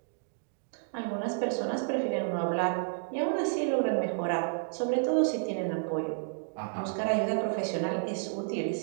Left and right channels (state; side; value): silent; left; digital silence